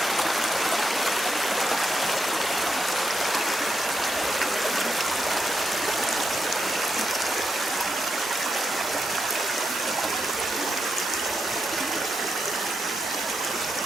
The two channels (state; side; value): normal; both; correlation 0.83